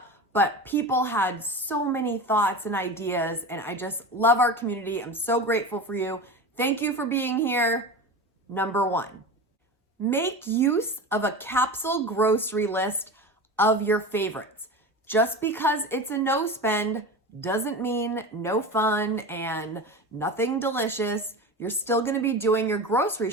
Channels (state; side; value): normal; both; correlation 0.28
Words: But people had so many thoughts and ideas, and I just love our community. I'm so grateful for you. Thank you for being here. Number 1, make use of a capsule grocery list of your favorites. Just because it's a no spend doesn't mean no fun and nothing delicious. You're still gonna be doing your grocery